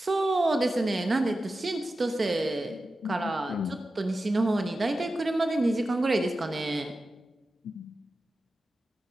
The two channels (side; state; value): both; normal; correlation 0.93